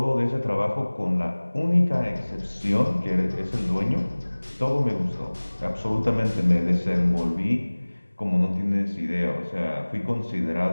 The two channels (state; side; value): inverted; both; correlation -1.00